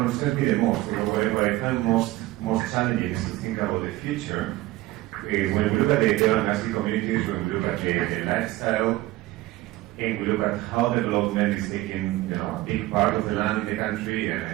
me the most, or what I find most challenging, is to think about the future. When we look at the Asli communities, when we look at the lifestyle, and we look at how development is taking a big part of the land in the country,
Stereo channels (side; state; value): left; quieter; 17.6 dB